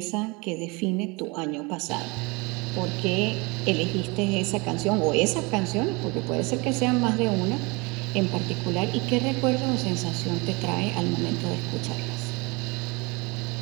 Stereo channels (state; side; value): quieter; left; 26.9 dB